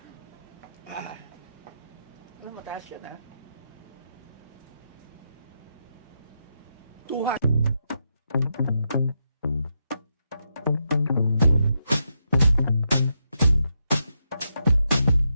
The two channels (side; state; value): both; inverted; correlation -0.83